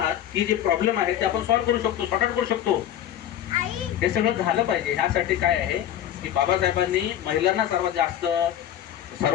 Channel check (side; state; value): right; quieter; 11.1 dB